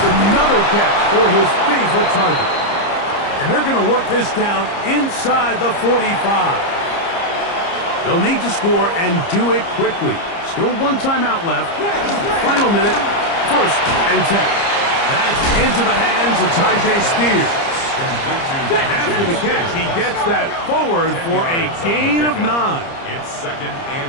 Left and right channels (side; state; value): right; late; 30 ms